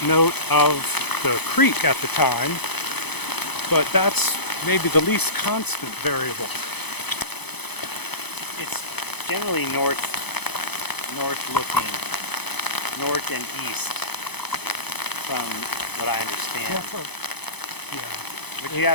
note of the creek at the time, but that's maybe the least constant variable. It's generally north looking, north and east, from what I understand. Yeah. But you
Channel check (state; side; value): late; right; 0.98 ms